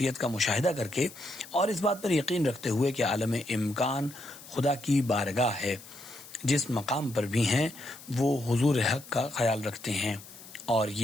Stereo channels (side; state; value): left; noise; hiss, 18 dB below the sound